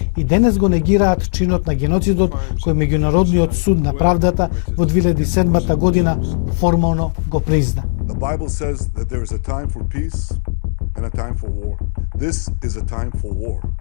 и денес го негираат чинот на геноцидот кој меѓународниот суд на правдата во 2007 година формално го призна. The Bible says that there is a time for peace and a time for war. This is a time for war.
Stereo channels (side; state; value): right; silent; digital silence